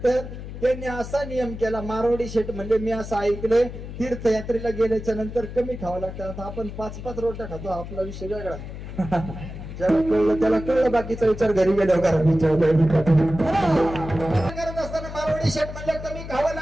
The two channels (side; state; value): left; noise; hum, 10 dB below the sound